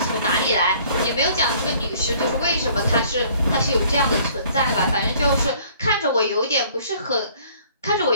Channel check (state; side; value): inverted; both; correlation -0.57